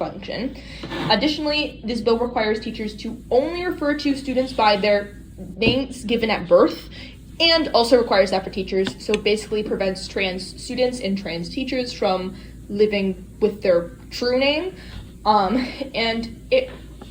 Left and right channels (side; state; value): both; identical; correlation 1.00